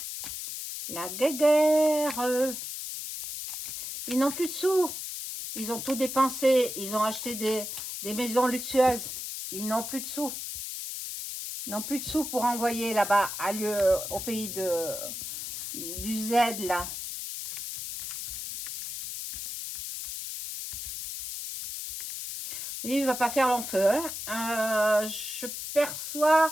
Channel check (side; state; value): left; noise; hiss, 6 dB below the sound